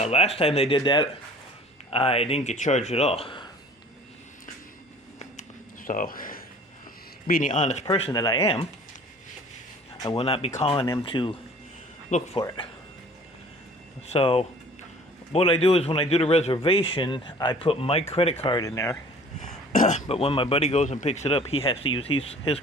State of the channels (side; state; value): both; normal; correlation 0.49